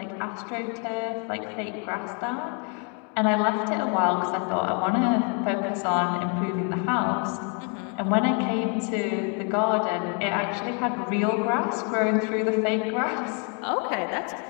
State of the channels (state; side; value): quieter; right; 38.1 dB